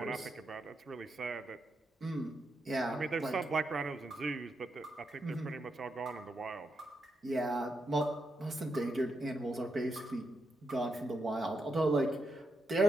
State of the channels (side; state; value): both; normal; correlation 0.83